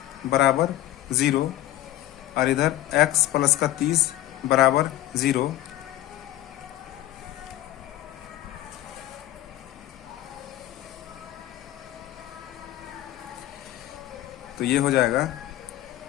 बराबर 0 और इधर x प्लस का 30 बराबर 0। तो ये हो जाएगा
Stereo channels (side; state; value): right; quieter; 14.3 dB